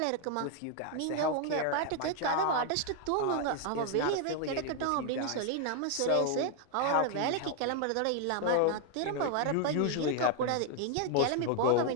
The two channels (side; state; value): both; different; correlation 0.00